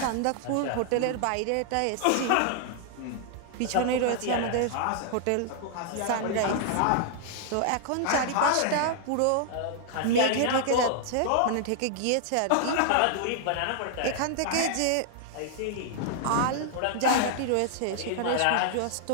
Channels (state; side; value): different; both; correlation -0.01